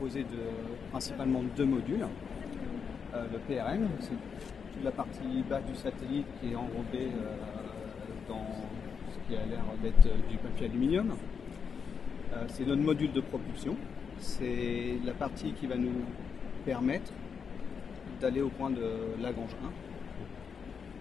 principalement de deux modules. Le PRN, c'est toute la partie basse du satellite qui est enrobée dans ce qui a l'air d'être du papier aluminium. C'est notre module de propulsion. C'est la partie qui va nous permettre d'aller au point de Lagrange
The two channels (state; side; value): quieter; right; 6.3 dB